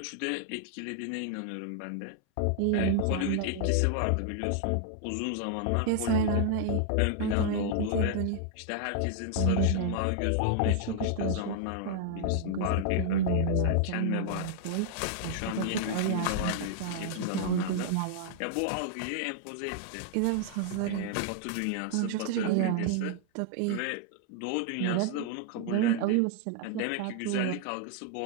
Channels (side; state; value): both; different; correlation 0.00